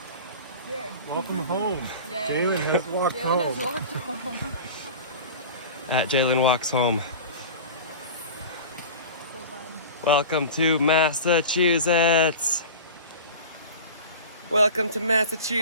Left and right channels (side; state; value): both; inverted; correlation -0.34